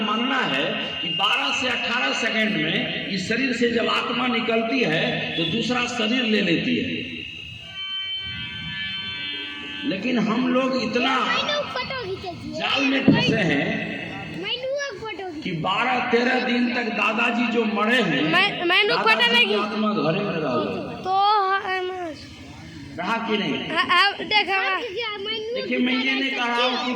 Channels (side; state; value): both; identical; correlation 1.00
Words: है कि 12 से 18 सेकंड में इस शरीर से जब आत्मा निकलती है तो दूसरा शरीर ले लेती है। लेकिन हम लोग इतना जाल में फंसे हैं कि 12-13 दिन तक दादाजी जो मरे हैं, दादाजी की आत्मा घरे में रहा कि नहीं? देखिए, मैं ये नहीं कह रहा हूँ कि